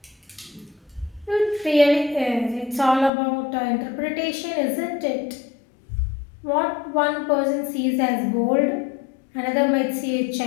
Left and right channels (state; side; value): drops out; right; at 3.1 s